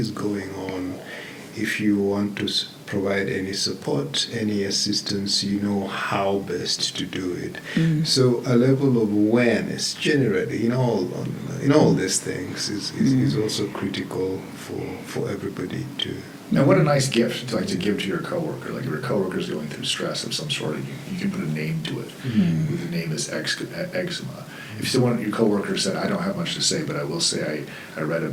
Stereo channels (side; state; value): both; identical; correlation 1.00